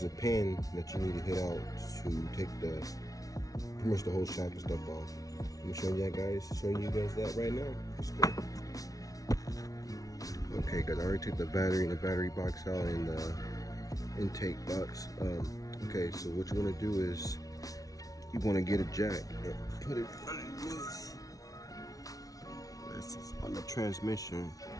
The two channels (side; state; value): right; late; 0.18 ms